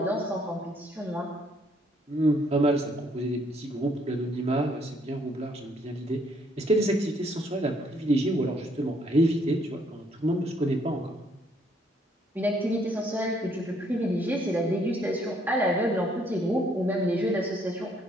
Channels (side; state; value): both; normal; correlation 0.67